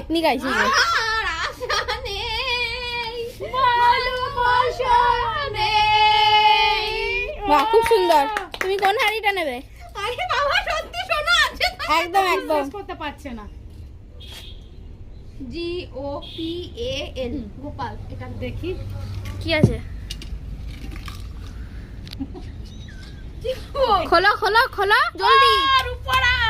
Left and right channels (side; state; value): both; identical; correlation 1.00